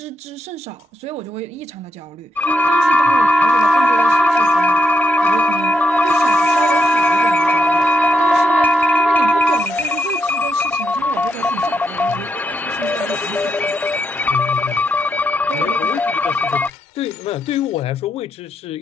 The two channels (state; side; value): normal; both; correlation 0.81